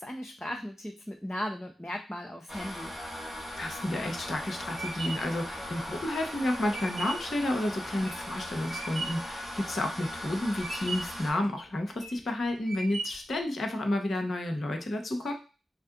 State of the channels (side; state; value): both; normal; correlation 0.91